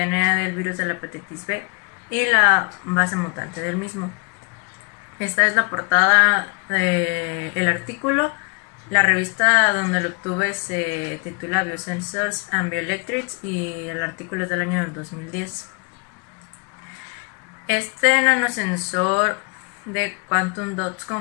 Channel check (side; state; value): right; quieter; 34.9 dB